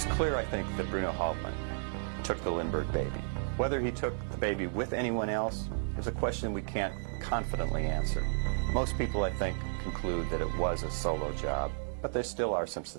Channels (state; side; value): silent; left; 56 dB below the other